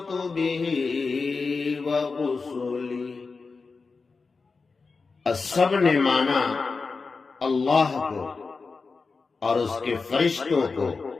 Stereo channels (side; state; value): right; quieter; 4.4 dB